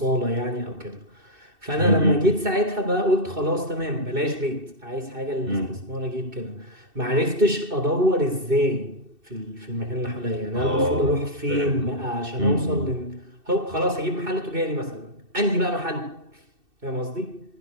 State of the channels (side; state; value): left; late; 2.6 ms